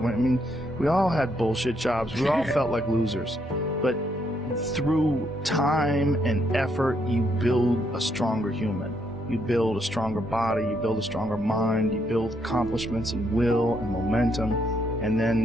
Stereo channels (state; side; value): normal; both; correlation 0.75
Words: I mean, we all had bullshit jobs. We all felt like losers. But through time and effort, you build a stronger human. You build a stronger body, you build a stronger mind, you build accomplishments and will and momentum, and